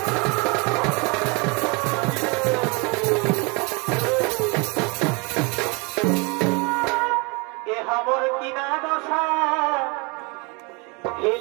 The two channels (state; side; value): quieter; left; 30.2 dB